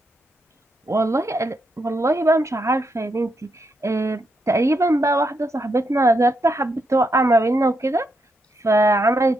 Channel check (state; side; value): normal; both; correlation 0.81